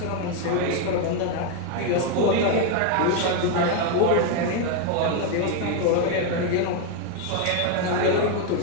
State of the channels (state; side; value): different; both; correlation 0.01